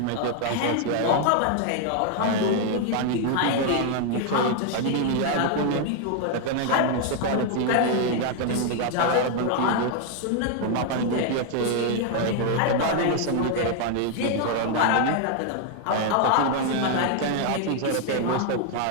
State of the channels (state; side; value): different; both; correlation 0.00